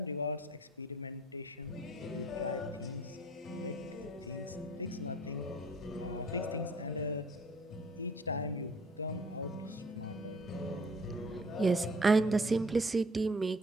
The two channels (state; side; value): normal; both; correlation 0.54